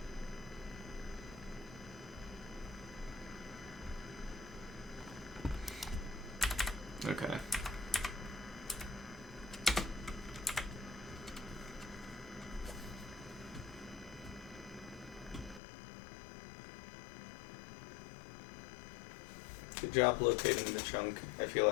Okay. Good job locating the chunk. I feel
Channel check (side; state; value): right; drops out; at 15.6 s